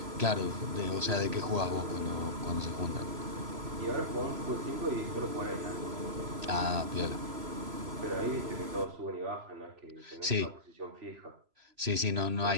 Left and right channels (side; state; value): left; late; 3.0 ms